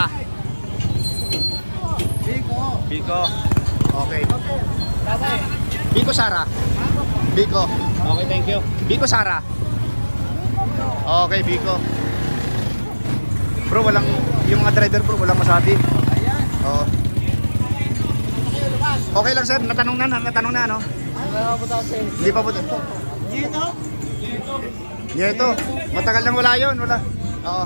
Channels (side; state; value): both; inverted; correlation -1.00